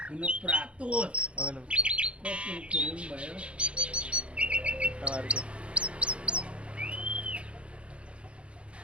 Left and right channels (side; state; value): left; late; 0.060 ms